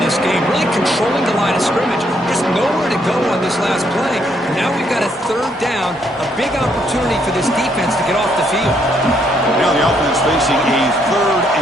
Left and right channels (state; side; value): normal; both; correlation 0.72